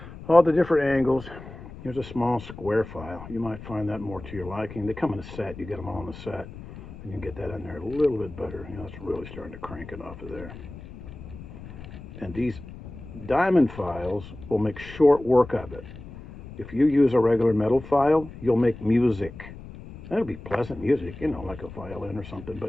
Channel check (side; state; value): left; noise; rumble, 14 dB below the sound